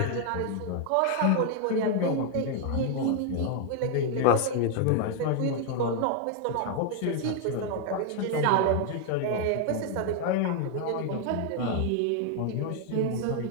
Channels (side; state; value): both; different; correlation 0.00